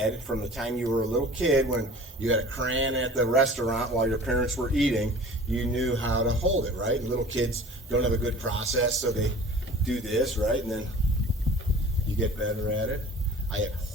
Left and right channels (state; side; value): normal; both; correlation 0.43